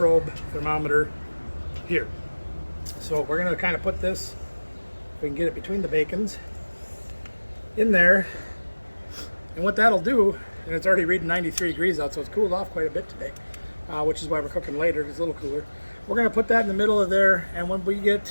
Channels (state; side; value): inverted; both; correlation -1.00